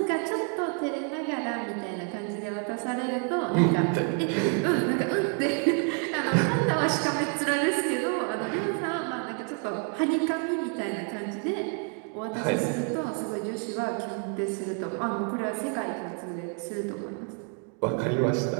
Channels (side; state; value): left; quieter; 39.1 dB